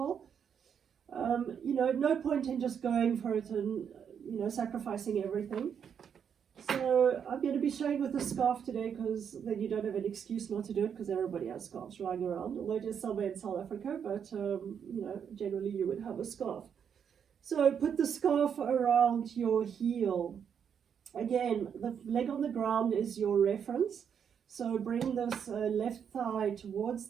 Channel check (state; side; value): quieter; left; 7.7 dB